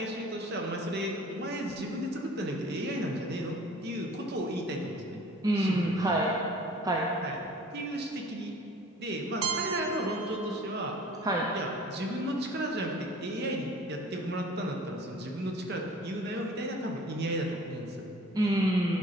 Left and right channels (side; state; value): both; normal; correlation 0.48